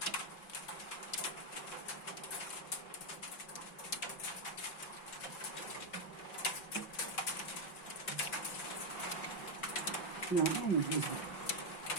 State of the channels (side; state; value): right; late; 5.6 ms